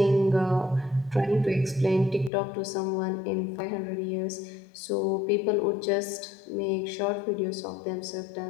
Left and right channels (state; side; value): drops out; right; at 2.3 s